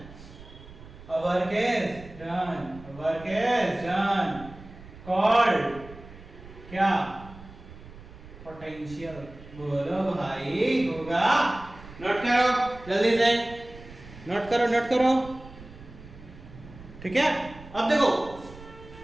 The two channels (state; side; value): noise; right; rumble, 18 dB below the sound